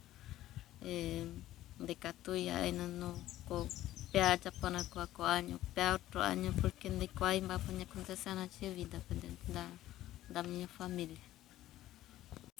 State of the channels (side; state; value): right; quieter; 14.3 dB